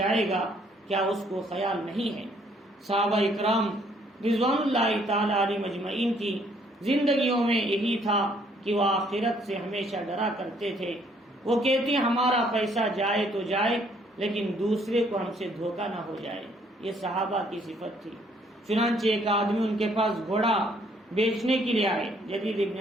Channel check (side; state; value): both; normal; correlation 0.65